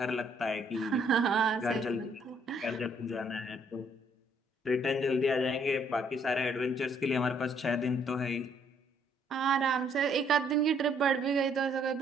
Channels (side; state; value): both; normal; correlation 0.67